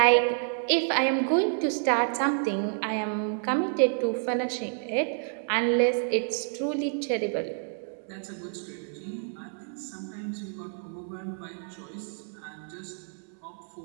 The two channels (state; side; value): silent; left; 59 dB below the other